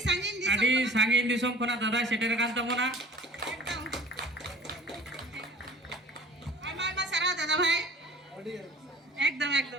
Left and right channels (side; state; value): both; normal; correlation 0.46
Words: अडी सांगिन दिसम कोना दादा सेटेर कान तमोना एकदम आमा सारा दादा भाई एकदम